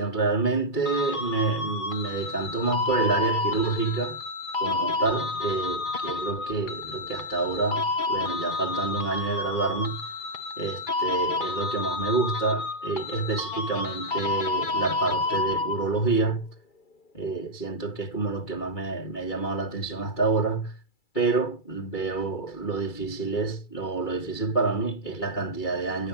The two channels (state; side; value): late; right; 2.3 ms